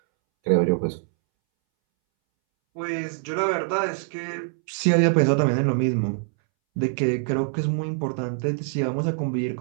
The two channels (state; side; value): silent; left; 62 dB below the other